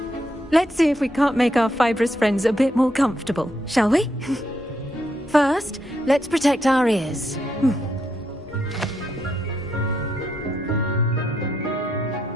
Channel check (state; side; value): normal; both; correlation 0.79